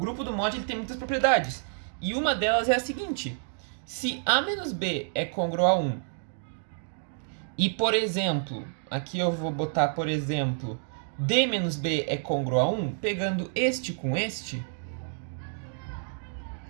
do mod ele tem muitas propriedades. E uma delas é a seguinte: se A menos B é congruo a 1, e, por exemplo, aqui eu vou botar, por exemplo, D menos B é congruo a 1, pegando este com este,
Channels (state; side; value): silent; left; digital silence